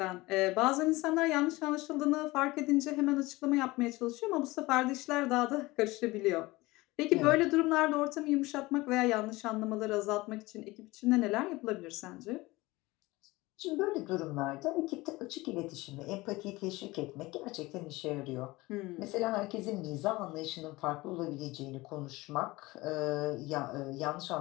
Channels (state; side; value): quieter; right; 20.8 dB